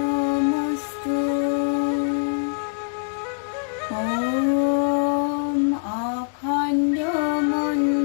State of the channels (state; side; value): silent; right; digital silence